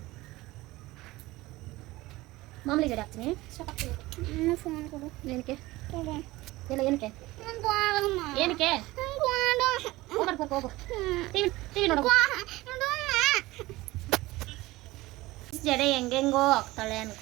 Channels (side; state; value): left; quieter; 19.3 dB